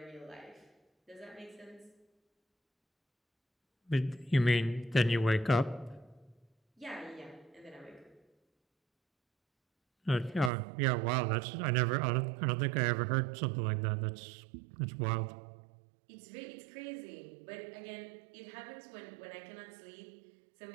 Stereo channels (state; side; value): drops out; left; at 10.5 s